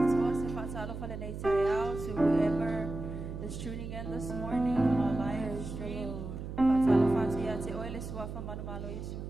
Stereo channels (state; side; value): noise; right; hum, 7 dB below the sound